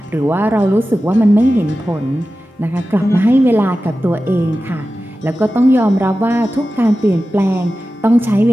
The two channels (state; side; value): normal; both; correlation 0.94